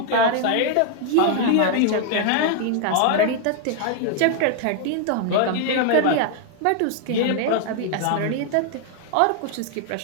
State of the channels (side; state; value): both; different; correlation 0.00